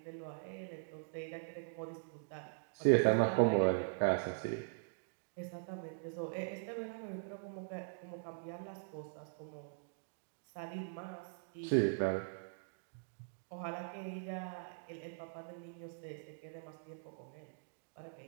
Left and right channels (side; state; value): left; silent; digital silence